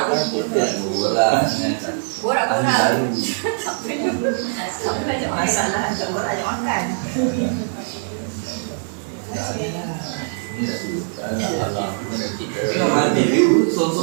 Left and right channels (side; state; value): left; silent; digital silence